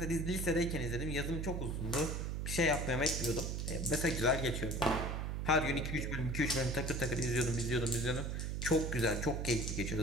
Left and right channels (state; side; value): noise; right; hum, 2 dB below the sound